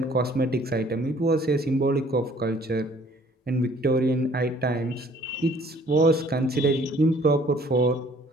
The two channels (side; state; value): both; normal; correlation 0.57